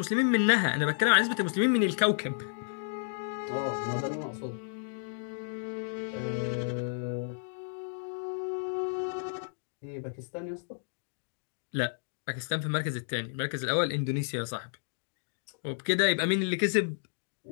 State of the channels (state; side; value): silent; right; digital silence